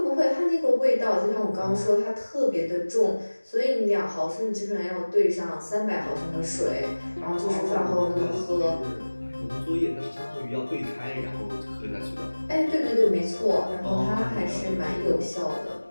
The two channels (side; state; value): both; inverted; correlation -1.00